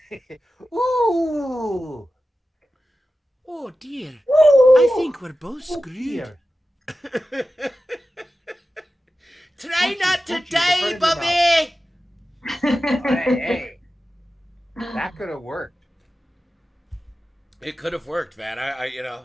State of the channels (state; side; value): normal; both; correlation 0.93